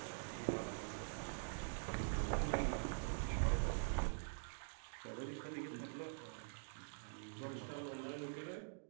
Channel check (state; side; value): silent; left; digital silence